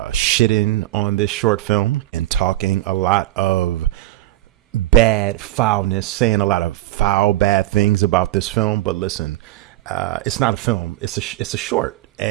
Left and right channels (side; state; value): left; quieter; 15.8 dB